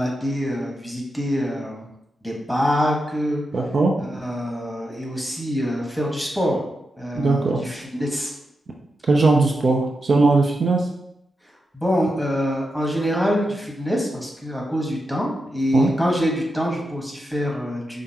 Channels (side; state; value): both; normal; correlation 0.87